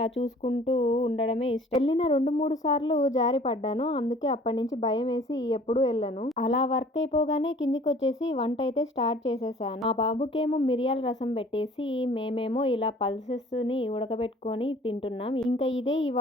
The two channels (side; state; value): both; normal; correlation 0.51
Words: చూసుకుంటూ ఉండడమే ఇష్టం. వెళ్ళిన 2-3 సార్లు జారి పడ్డాను. అందుకే అప్పటి నుంచి భయం వేసి ఎప్పుడు వెళ్ళను. అలా వర్క్ అయిపోగానే కిందికి వచ్చేసి వంట అయితే స్టార్ట్ చేసేసాను. మా బాబుకేమో మిరియాల రసం పెట్టేసి మేమేమో ఇలా పల్సెస్ ని ఉడకబెట్టుకొని తింటున్నాం. ఇంకా ఇదే